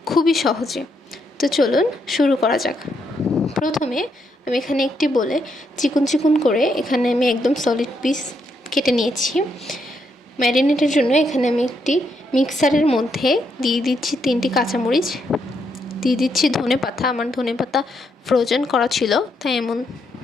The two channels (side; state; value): both; normal; correlation 0.77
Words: খুবই সহজে। তো চলুন শুরু করা যাক। প্রথমে আমি এখানে একটি বলে চিকন চিকন করে এখানে আমি একদম সলিড পিস কেটে নিয়েছি। ম্যারিনেটের জন্য এখানে আমি একটি মিক্সারের মধ্যে দিয়ে দিচ্ছি 3টি কাঁচামরিচ, দিয়ে দিচ্ছি ধনেপাতা। আমার ধনেপাতা ফ্রোজেন করা ছিল তাই এমন